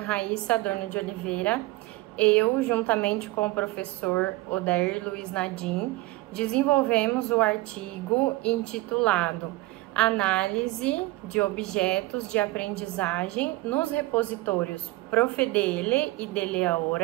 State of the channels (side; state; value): left; quieter; 19.4 dB